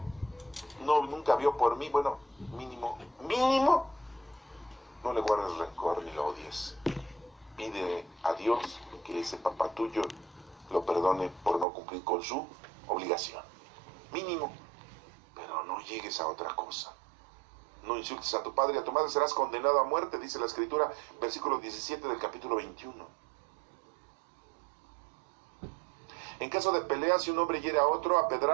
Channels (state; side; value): drops out; left; at 11.7 s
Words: nunca vio por mí. Bueno, mínimo, no le guardes rencor ni lo odies. Pide a Dios que ese papá tuyo lo perdone por no cumplir con su obligación. Mínimo. Pero no llegues a otra cosa. No insultes a tu padre y a tu madre, serás condenado a muerte, dice la Escritura, versículo 17 del capítulo 21. En caso de pelea, si un hombre hiere a otro a